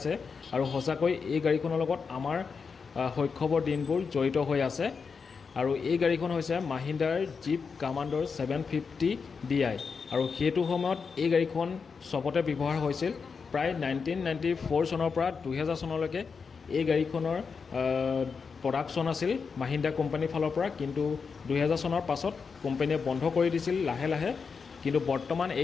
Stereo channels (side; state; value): right; quieter; 5.4 dB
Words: আৰু সঁচাকৈ এই গাড়ীখনৰ লগত আমাৰ শৈশৱৰ দিনবোৰ জড়িত হৈ আছে। আৰু এই গাড়ীখন হৈছে মাহিন্দ্ৰাৰ জীপ কমাণ্ডাৰ 750 DI আৰু সেইটো সময়ত এই গাড়ীখন চবতে ব্যৱহাৰ হৈছিল। প্ৰায় 1994 চনৰ পৰা 2000 চনলৈকে এই গাড়ীখনৰ প্ৰডাকশ্যন আছিল মাহিন্দ্ৰা কোম্পানীৰ ফালৰ পৰা, কিন্তু 2000 চনৰ পাছত কোম্পানীয়ে বন্ধ কৰি দিছিল লাহে লাহে। কিন্তু বৰ্তমান